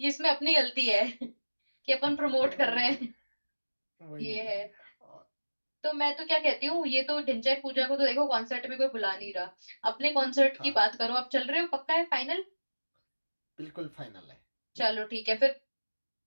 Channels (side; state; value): both; inverted; correlation -1.00